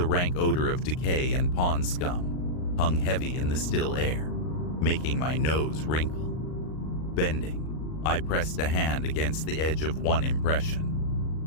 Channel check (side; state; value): right; late; 39 ms